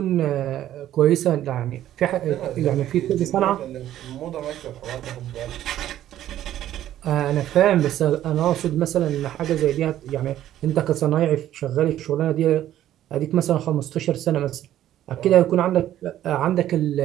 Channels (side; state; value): left; quieter; 12.4 dB